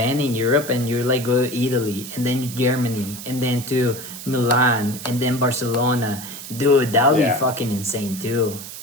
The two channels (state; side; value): noise; right; hiss, 11 dB below the sound